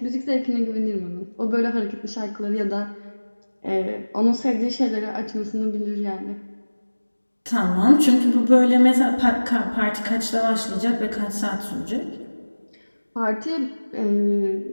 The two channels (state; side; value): inverted; both; correlation -1.00